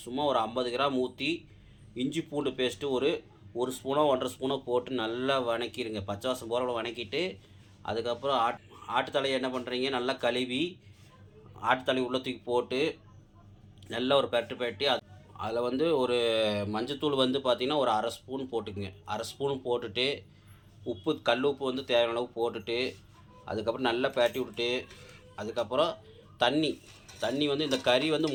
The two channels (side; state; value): both; identical; correlation 1.00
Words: சும்மா ஒரு 50 கிராம் ஊற்றி இஞ்சி பூண்டு பேஸ்ட்டு ஒரு ஸ்பூனோ 1.5 ஸ்பூனோ போட்டு நல்லா வணக்கிடுங்க. பச்சை வாசம் போகிற வணக்கிட்டு அதுக்கப்புறம் ஆட்டுத்தலையை என்ன பண்ணுறீங்க, நல்லா கழுவி ஆட்டுத்தலை உள்ள தூக்கி போட்டு நல்லா ஒரு பெரட்டி அதில் ஒரு மஞ்சத்தூள் பார்த்திங்கன்னா ஒரு 1/2 ஸ்பூன் போட்டுக்குங்க. 1/2 ஸ்பூன் போட்டுட்டு உப்பு, கல் உப்பு தேவையான அளவு போட்டுட்டு அதுக்கப்புறம் நல்லா பெரட்டி விட்டுட்டு அதுக்கப்புறம் தண்ணி இந்த கறி